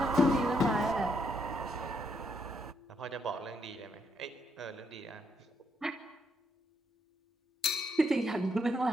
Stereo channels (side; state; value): both; normal; correlation 0.76